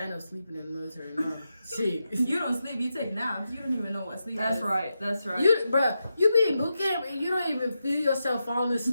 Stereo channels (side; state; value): both; inverted; correlation -0.88